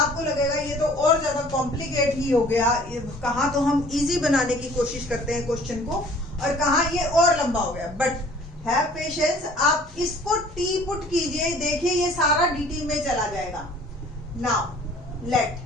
लगेगा ये तो और ज्यादा कॉम्प्लिकेट ही हो गया, कहाँ तो हम इजी बनाने की कोशिश करते हैं क्वेश्चन को और कहाँ ये और लंबा हो गया। बट हैव पेशेंस, आप इसको टी पुट कीजिए, देखिए ये सारा dt में चला जाएगा। Now let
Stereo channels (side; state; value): both; normal; correlation 0.52